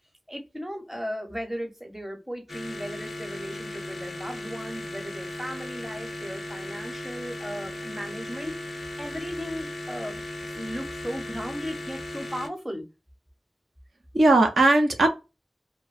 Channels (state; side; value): normal; both; correlation 0.89